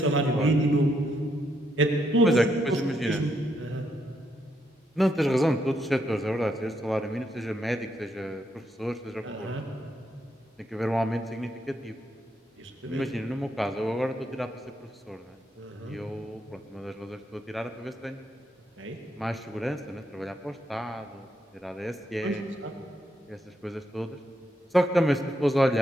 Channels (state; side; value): normal; both; correlation 0.77